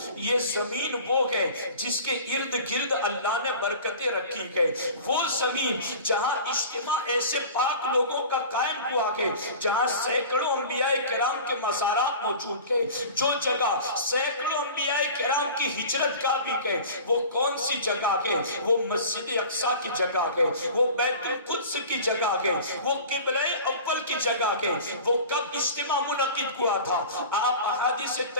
یہ زمین وہ ہے جس کے ارد گرد اللہ نے برکتیں رکھی ہے۔ وہ زمین جہاں اجتماع ایسے پاک لوگوں کا قائم ہوا ہے، جہاں سینکڑوں انبیاء کرام کے مزارات موجود ہیں، جو جگہ سینکڑوں انبیاء کرام کی ہجرت کا بھی ہے، وہ کون سی جگہ ہے؟ وہ مسجد اقصی کی جگہ ہے، وہ بیت القدس کی جگہ ہے، وہ قبلہ اول کی جگہ ہے۔ وہ کب اجتماع منعقد ہوا تھا؟ آپ احادیث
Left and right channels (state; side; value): inverted; both; correlation -0.39